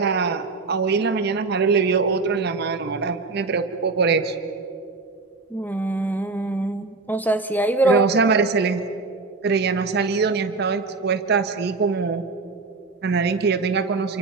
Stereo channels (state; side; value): quieter; left; 4.0 dB